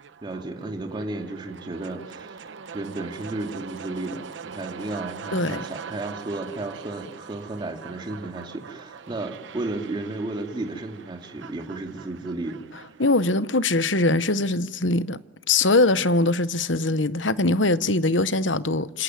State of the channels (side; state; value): both; normal; correlation 0.22